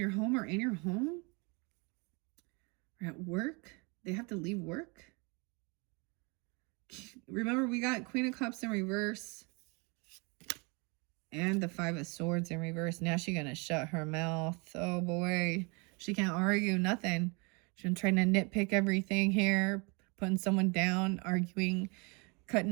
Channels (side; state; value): left; quieter; 30.7 dB